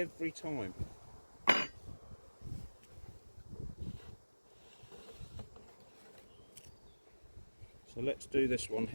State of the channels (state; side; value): inverted; both; correlation -1.00